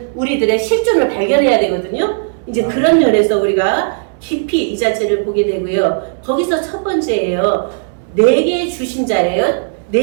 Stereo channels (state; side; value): silent; left; digital silence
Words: 우리들의 실존을 발견해야 되거든요. 이제 그런 면에서 우리가 깊이 이 자체를 보게 되고요. 거기서 첫 번째예요. 내게 주신 자예요.